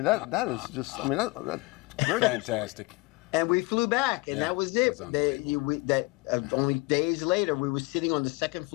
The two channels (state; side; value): quieter; right; 24.6 dB